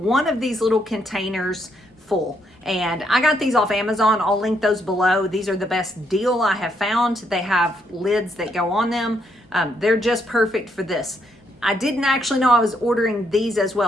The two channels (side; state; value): both; normal; correlation 0.74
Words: of these little containers full. And I got these off Amazon. I'll link those below. These are the best deal I have found. They have lids that go on them. They're just perfect for this. I didn't actually know I was ordering these as